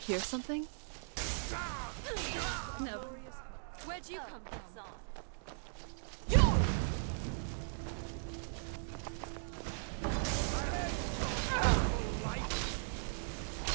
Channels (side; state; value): left; silent; digital silence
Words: something? No. Where'd you come from?